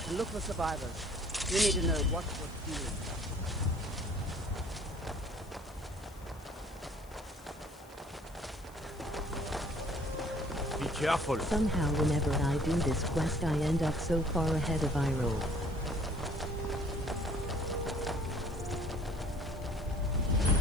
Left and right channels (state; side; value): noise; left; hiss, 24 dB below the sound